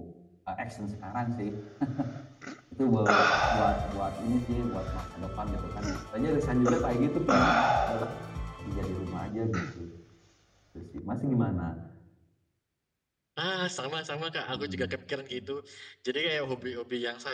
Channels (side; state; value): both; identical; correlation 1.00